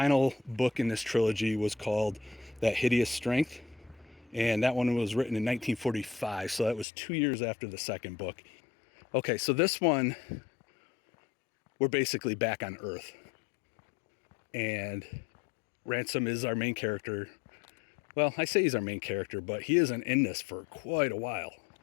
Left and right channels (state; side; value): drops out; right; at 6.9 s